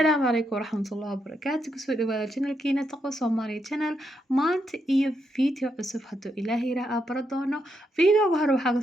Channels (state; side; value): normal; both; correlation 0.80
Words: عليكم ورحمة الله وبركاته كسو دواada channelkiina taqo Soomaali channel maanta iyo video cusub haduu Ilaahay raa baradoono videoga hore